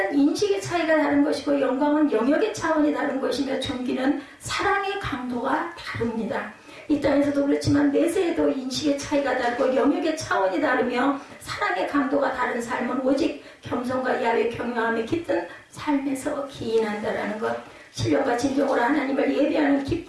인식의 차이가 다른 것이고 영광은 영역의 차원이 다른 것이며 존귀는 사랑의 강도가 다릅니다. 이 땅에서도 그렇지만 내세에도 인식의 차이가 다르고 영역의 차원이 다르며 사랑의 강도가 다른 삶은 오직 겸손과 야외 경외함에 깃든 삶에서 기인한다라는 것. 신령과 진정으로 하나님을 예배하는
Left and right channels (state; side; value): identical; both; correlation 1.00